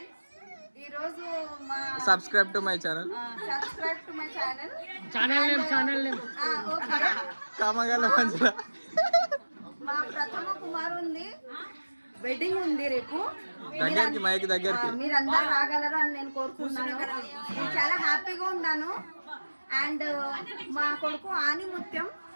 ఈరోజు సబ్స్క్రైబ్ టు మై ఛానల్. కామగల మంచిగా మా ప్రథమ కుమారుంది వెడ్డింగ్ ఉంది రేపు. దగ్గరికి మైక్ దగ్గరికి మీరందరూ రాగలరు అని నేను కోరుకుంటున్నాను. నేను చాలా హ్యాపీగా ఉన్నాను. అండ్ మా కొడుకు ఆని ముత్యం.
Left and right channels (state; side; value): inverted; both; correlation -1.00